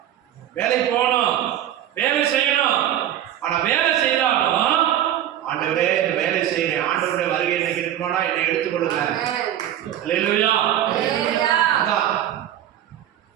வேலைக்கு போகணும், வேலை செய்யணும். ஆனா வேலை செய்யறாலும் ஆண்டவரே இந்த வேலை செய்யறேன், ஆண்டவருடைய வருகை எனக்கு இருக்குமானா என்னை எடுத்துக்கொள்ளுங்க. அல்லேலூயா. அதான்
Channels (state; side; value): quieter; left; 11.4 dB